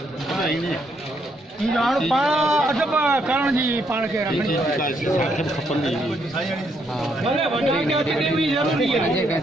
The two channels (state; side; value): normal; both; correlation 0.74